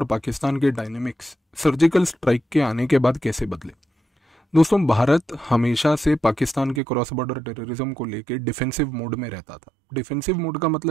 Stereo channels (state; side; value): drops out; left; at 6.8 s